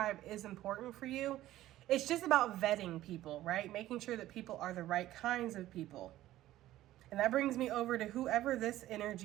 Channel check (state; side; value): quieter; left; 14.6 dB